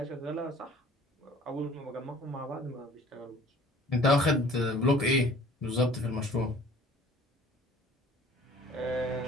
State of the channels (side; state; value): both; normal; correlation 0.50